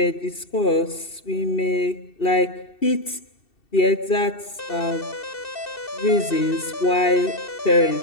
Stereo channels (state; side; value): late; right; 2.7 ms